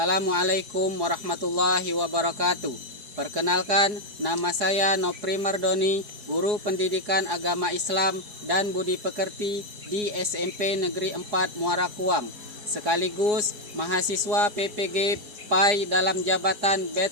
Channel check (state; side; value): late; left; 4.8 ms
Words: warahmatullahi wabarakatuh. Perkenalkan, nama saya Nopri Mardoni, guru pendidikan agama Islam dan budi pekerti di SMP Negeri 4 Muara Kuang, sekaligus mahasiswa PPG PAI dalam jabatan